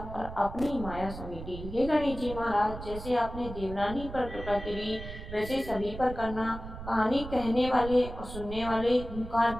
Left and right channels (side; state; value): right; noise; rumble, 10 dB below the sound